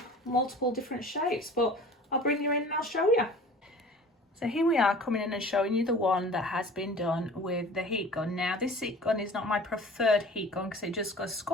multiple different shapes. But I'll bring you in and I'll show you. So here we are coming in and showing you the one that has been done with the heat gun. Now this heat gun is not my preferred heat gun because it just goes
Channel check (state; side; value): normal; both; correlation 0.43